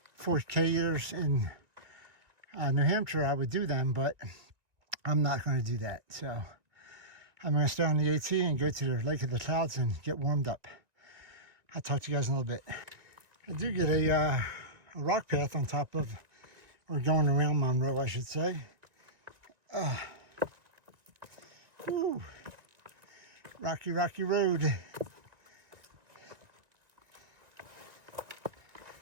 4K years in New Hampshire, I would do them, but I'm not going to do that. So I'm going to stay on the AT and go to the Lake of the Clouds and get warmed up. I'll talk to you guys in a little bit. I do get a rock path on top of, or going around Monroe, I should say. Woo. Rocky, rocky road.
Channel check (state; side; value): late; left; 1.9 ms